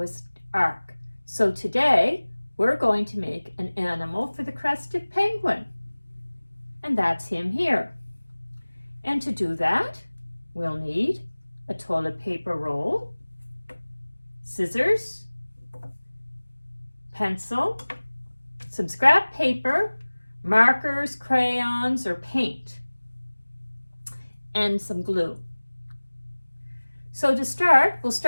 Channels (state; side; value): inverted; both; correlation -1.00